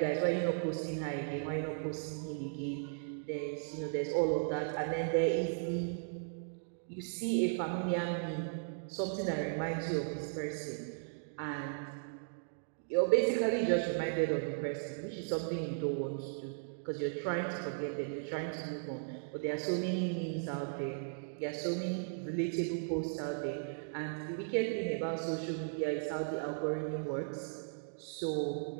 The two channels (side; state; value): left; silent; digital silence